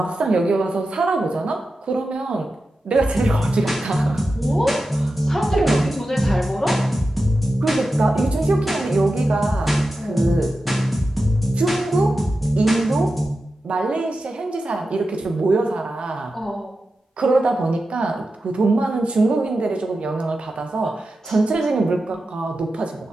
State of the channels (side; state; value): both; normal; correlation 0.92